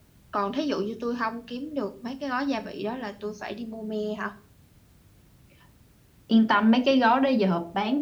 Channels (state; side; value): identical; both; correlation 1.00